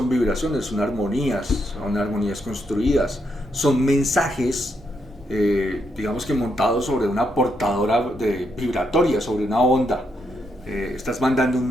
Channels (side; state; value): both; normal; correlation 0.79